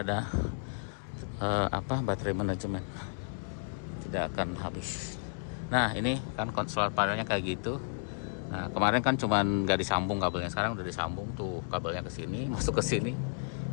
ada baterai manajemen, tidak akan habis. Nah ini kan solar panelnya kayak gitu. Nah kemarin kan cuman nggak disambung kabelnya, sekarang udah disambung tuh kabelnya ke sini, masuk ke sini.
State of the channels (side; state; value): right; silent; digital silence